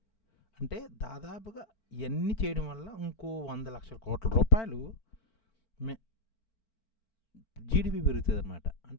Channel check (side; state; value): right; late; 4.5 ms